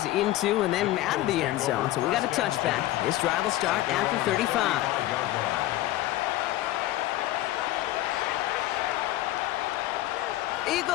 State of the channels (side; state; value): right; quieter; 15.5 dB